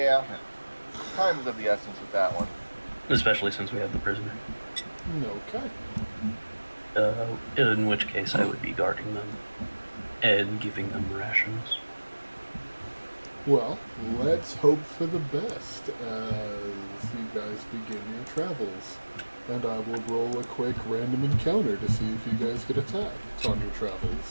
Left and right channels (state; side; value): inverted; both; correlation -1.00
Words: Time is of the essence with that one. Especially since we have the prisoner. okay. In which case I would be guarding them and giving them rations. Well, let's hope for the best as you guys begin your travels. And I will roll a quick random encounter to see if you guys get attacked on your